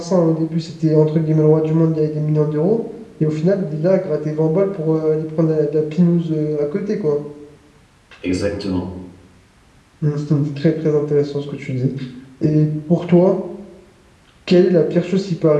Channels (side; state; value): both; identical; correlation 1.00